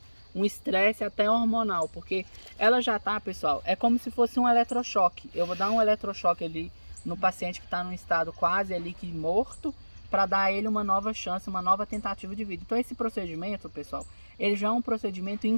um estresse até hormonal, porque ela já tá, pessoal, é como se fosse um eletrochoque. Eu vou dar um eletrochoque ali no paciente que está num estado quase ali que morto, para dar a ele uma nova chance, uma nova tentativa de vida. Então esse procedimento, pessoal, ele já é um procedimento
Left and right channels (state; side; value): inverted; both; correlation -1.00